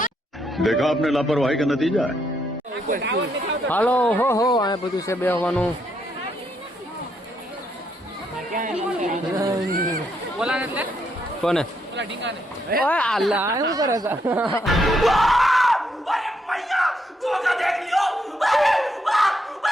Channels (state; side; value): normal; both; correlation 0.76